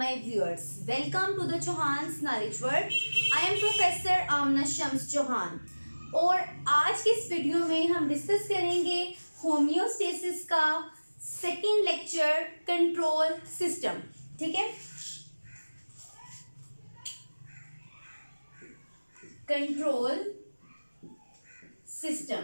viewers. Welcome to the Chauhan's Knowledge World. I am Professor Amna Shams Chauhan. और आज के इस video में हम discuss करेंगे होम्योस्टेसिस का सेकेंड लेक्चर कंट्रोल सिस्टम. ठीक है, कंट्रोल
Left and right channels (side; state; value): both; inverted; correlation -1.00